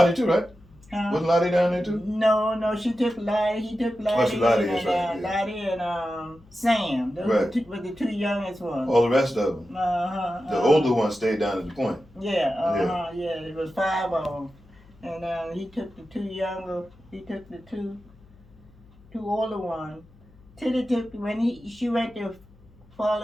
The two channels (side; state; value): left; noise; hum, 26 dB below the sound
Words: too, right? Wasn't Lottie down there too? No, she took Lottie. He took Lottie, Lottie and Sam. Those were the 2 youngest ones. All the rest of them. The older one stayed down at the point. Yeah. It was 5 of them. And he took the 2 younger, he took the two older ones. Tilly took, when she went to